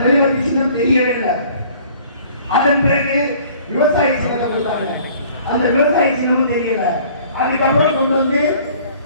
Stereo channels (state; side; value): inverted; both; correlation -0.53